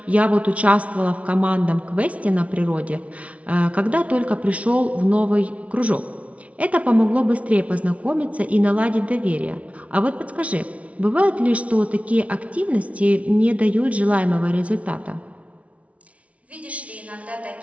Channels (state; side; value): late; left; 0.065 ms